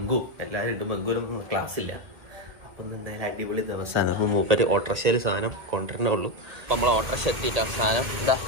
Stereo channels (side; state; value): left; late; 2.2 ms